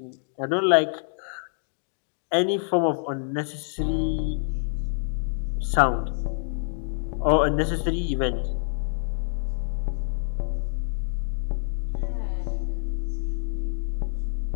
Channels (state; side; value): silent; right; digital silence